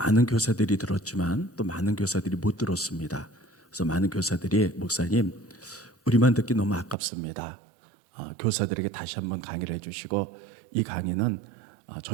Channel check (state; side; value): drops out; left; at 7.0 s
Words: 교사들이 들었지만 또 많은 교사들이 못 들었습니다. 그래서 많은 교사들이 목사님 우리만 듣기 너무 아깝습니다. 교사들에게 다시 한번 강의를 해주시고 이 강의는